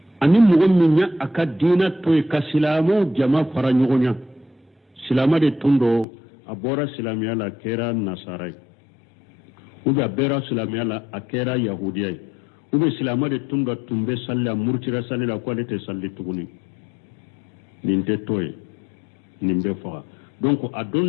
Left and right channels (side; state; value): right; drops out; at 6.1 s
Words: ani mogon minya aka dina toy ka silamo jama fara ñogonya silama de tundo abora silamiya la kera nasarai ube abera silamiya la akera yahudiyai ube silama de tundo tumbe salla murtira salla ko alete salli tuguni ninte toy nimbe faga donc